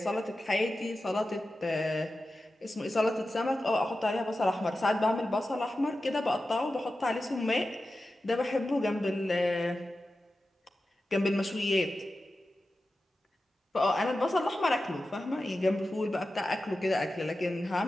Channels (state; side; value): normal; both; correlation 0.93